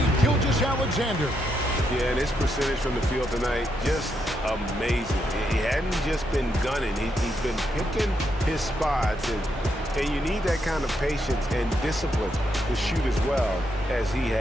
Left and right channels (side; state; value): both; normal; correlation 0.80